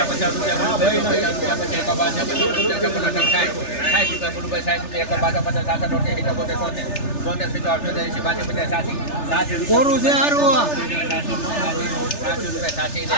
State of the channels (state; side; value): late; right; 3.4 ms